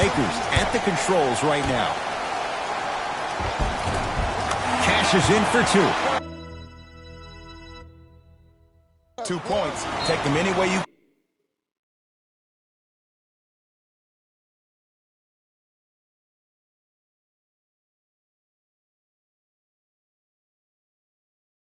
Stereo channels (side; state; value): both; identical; correlation 1.00